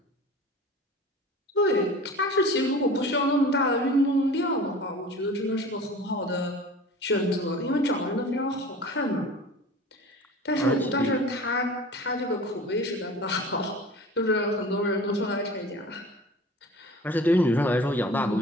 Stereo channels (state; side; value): normal; both; correlation 0.40